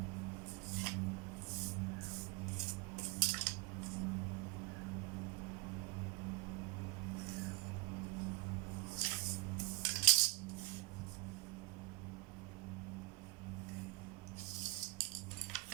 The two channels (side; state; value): left; quieter; 22.3 dB